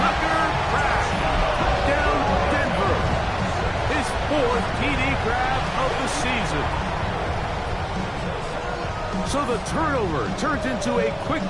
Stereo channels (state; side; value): identical; both; correlation 1.00